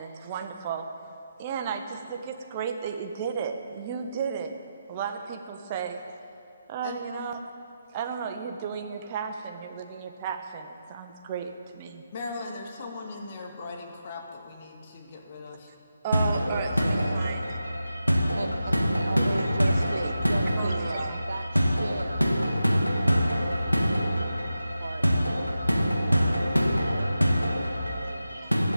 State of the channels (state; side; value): inverted; both; correlation -0.89